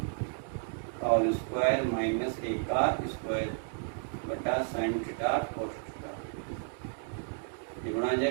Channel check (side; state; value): left; silent; 56 dB below the other